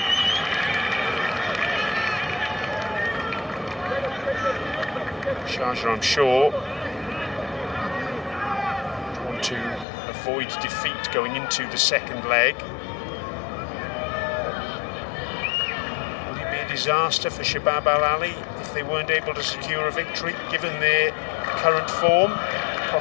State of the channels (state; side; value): drops out; right; at 9.9 s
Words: Sharjah, I'm sure, want to avoid defeat going into the second leg. Would it be a disaster for Shabab Al Ahli if they weren't able to secure a victory, given their current form?